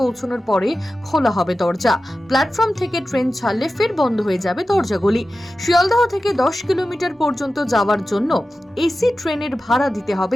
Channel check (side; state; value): both; normal; correlation 0.94